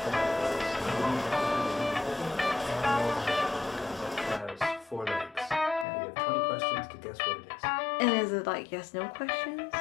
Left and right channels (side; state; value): right; drops out; at 5.9 s